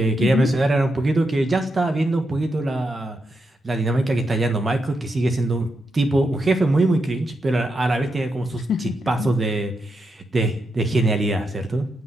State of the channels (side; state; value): both; normal; correlation 0.84